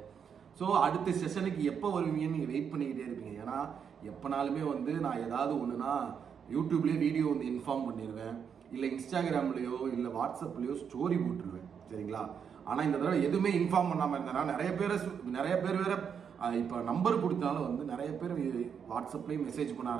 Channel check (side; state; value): left; quieter; 7.3 dB